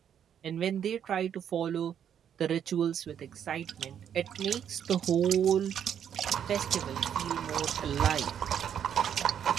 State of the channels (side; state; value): left; quieter; 8.9 dB